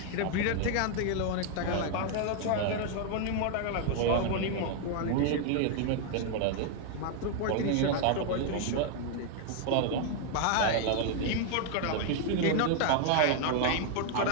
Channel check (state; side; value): different; both; correlation 0.00